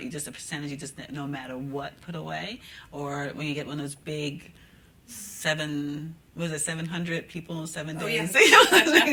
a percentage you just no matter what put away? Or when you get one of those big 700 people in 7 days?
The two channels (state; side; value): identical; both; correlation 1.00